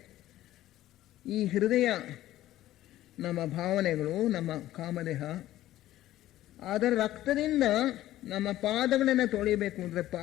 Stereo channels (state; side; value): quieter; right; 14.4 dB